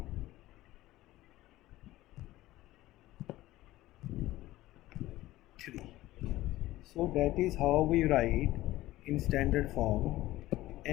3. So that is how we write in standard form.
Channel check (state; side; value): quieter; right; 16.5 dB